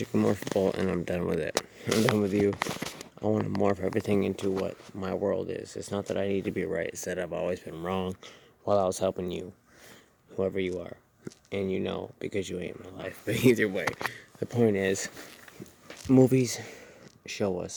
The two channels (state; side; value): identical; both; correlation 1.00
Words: and morphable, and I'm done with it. I'm done with you. I want to morph everything into what my world is. It's not that I need to be right, it's that I've always been wrong while I was helping you, whoever you are. And you know, because you ain't my life. But either way, the point is, movies show